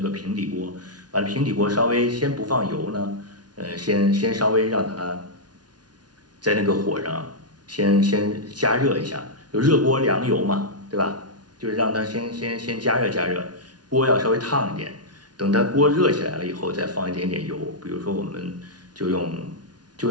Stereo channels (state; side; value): late; left; 0.69 ms